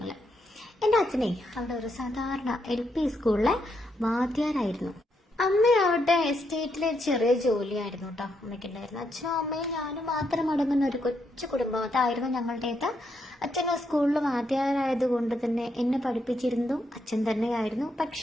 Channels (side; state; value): both; normal; correlation 0.79